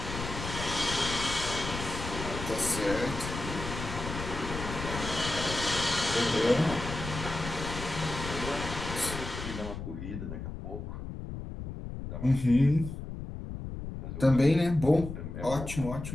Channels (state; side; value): noise; left; rumble, 7 dB below the sound